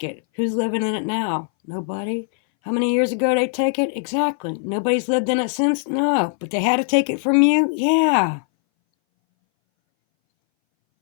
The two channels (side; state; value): right; silent; 61 dB below the other